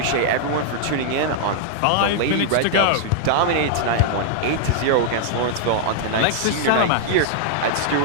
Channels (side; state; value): both; different; correlation -0.01